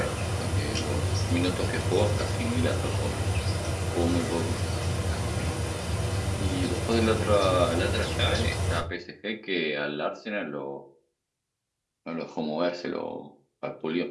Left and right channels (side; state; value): both; identical; correlation 1.00